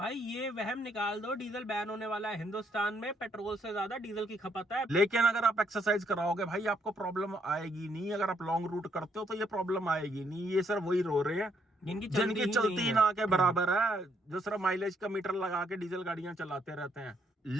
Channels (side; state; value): both; normal; correlation 0.72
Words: ये वहम निकाल दो, डीजल बैन होने वाला है। हिंदुस्तान में पेट्रोल से ज्यादा डीजल की खपत है। लेकिन अगर आप एक्सरसाइज कराओगे भाई आपको प्रॉब्लम आएगी नहीं। अगर आप लॉन्ग रूट करते हो तो ये प्रॉब्लम आएगी नहीं। ये सिर्फ वही रो रहे हैं जिनकी चलती ना के बराबर है, जो सिर्फ माइलेज का मीटर लगा के डीजल गाड़ियां चलाते रहते हैं।